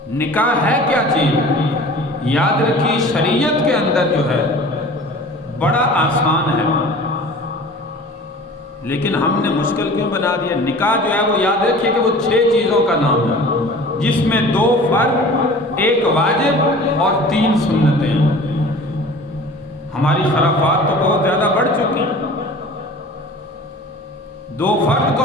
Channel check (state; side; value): normal; both; correlation 0.43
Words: نکاح ہے کیا چیز؟ یاد رکھیے شریعت کے اندر جو ہے بڑا آسان ہے، لیکن ہم نے مشکل کیوں بنا دیا؟ نکاح جو ہے وہ یاد رکھیے کہ وہ 6 چیزوں کا نام ہے، جس میں 2 فرض، 1 واجب اور 3 سنتیں ہیں۔ ہماری خرافات تو بہت زیادہ بڑھ چکی ہیں۔ 2 فرض